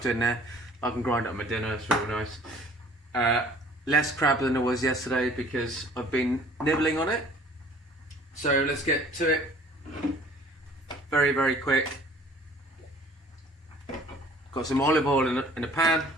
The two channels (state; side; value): normal; both; correlation 0.52